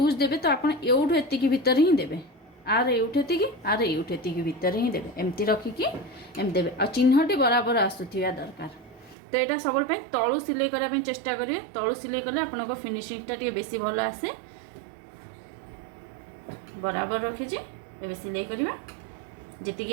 देबे तो आपण एउठु एतिकी भितर ही देबे आर एउठेती आर एउठेती भितर ही देबे एमती रखिकी एम देबे आ चिन्हटी बराबर आसुथिया दरकार तो यहाँ सब तलू सिलाई करने चेष्टा करेंगे तलू सिलाई कले आपन फिनिशिंगटा टी बेसी भल आसे बराबर रखीचे ए सिलाई करवा जी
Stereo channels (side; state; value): left; drops out; at 9.2 s